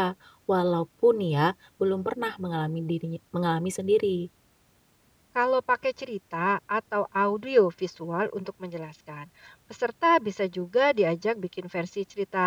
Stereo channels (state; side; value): identical; both; correlation 1.00